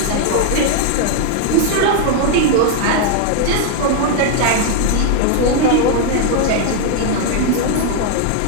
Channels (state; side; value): different; both; correlation 0.00